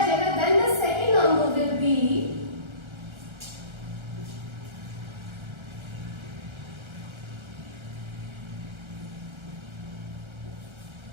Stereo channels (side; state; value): left; late; 1.3 ms